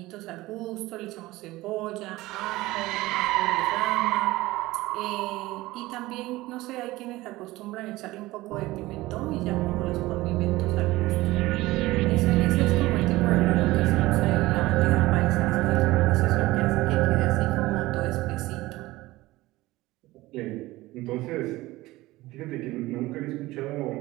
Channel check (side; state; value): left; quieter; 18.7 dB